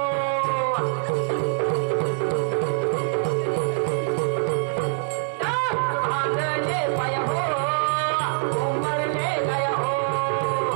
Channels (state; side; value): silent; left; 62 dB below the other